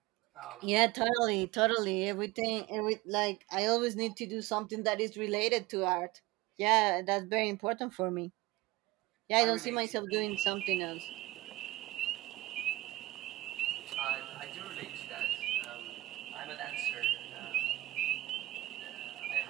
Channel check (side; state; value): left; quieter; 18.3 dB